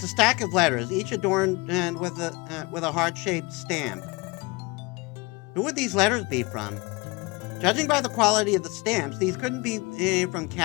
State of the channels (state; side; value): quieter; right; 25.8 dB